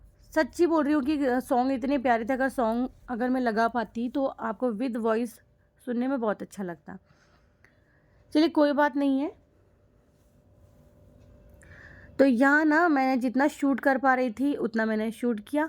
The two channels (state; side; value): identical; both; correlation 1.00